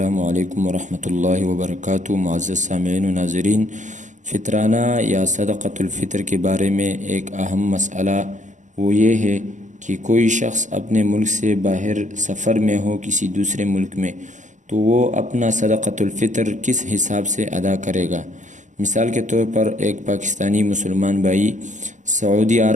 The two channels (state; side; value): late; left; 0.36 ms